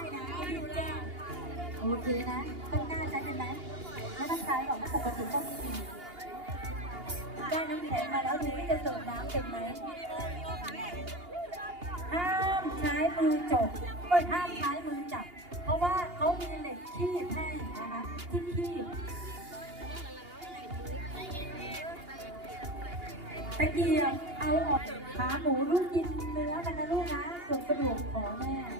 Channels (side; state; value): left; late; 2.8 ms